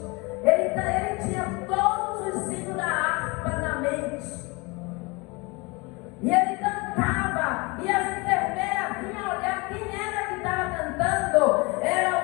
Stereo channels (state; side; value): quieter; right; 26.4 dB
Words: Ele tinha todos os hinos da harpa na mente. E ele cantava, e as enfermeiras vinham olhar quem era que estava cantando.